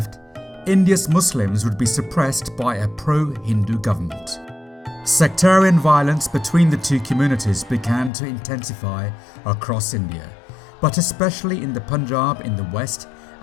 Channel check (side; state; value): right; drops out; at 8.1 s